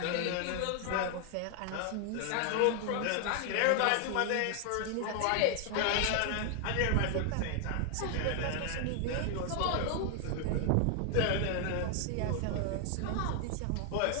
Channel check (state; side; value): different; both; correlation 0.00